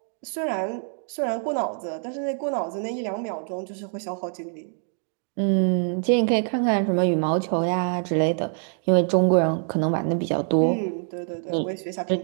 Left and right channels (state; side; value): silent; left; 62 dB below the other